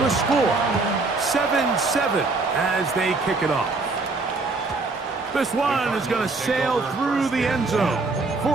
score. 7-7 as they kick it off. This one is going to sail through the end zone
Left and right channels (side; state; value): left; quieter; 3.7 dB